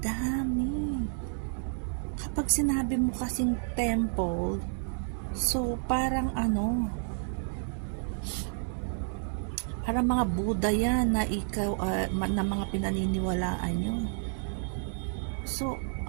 dami. Kapag sinabi mo kasing temple, so parang parang mga Buddha yan na ikaw, na mga pinaniniwalaan nyo. So,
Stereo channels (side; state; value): left; silent; 58 dB below the other